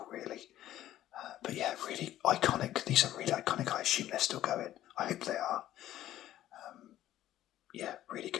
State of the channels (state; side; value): quieter; right; 13.2 dB